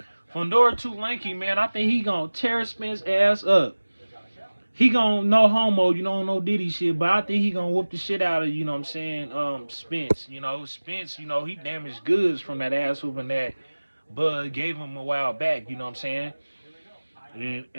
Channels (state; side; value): inverted; both; correlation -1.00